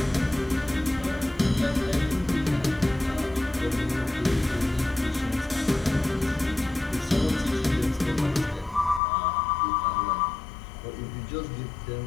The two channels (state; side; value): drops out; right; at 9.0 s